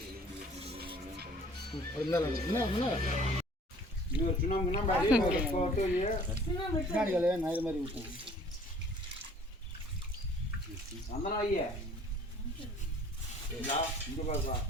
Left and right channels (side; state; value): both; normal; correlation 0.52